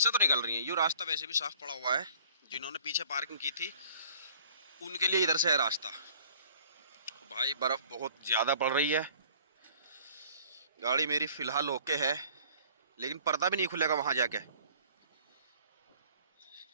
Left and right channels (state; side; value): inverted; both; correlation -0.53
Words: तो निकल रही है, ये रास्ता वैसे भी साफ पड़ा हुआ है। जिन्होंने पीछे पार्किंग की थी उनके लिए इधर से है रास्ता। भाई बर्फ बहुत ज़्यादा पड़ रही है। गाड़ी मेरी फ़िलहाल ओके है, लेकिन पर्दा भी नहीं खुलेगा वहाँ जाके।